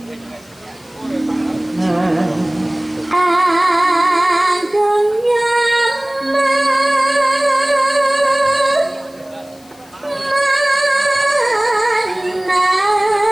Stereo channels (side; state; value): left; noise; hiss, 27 dB below the sound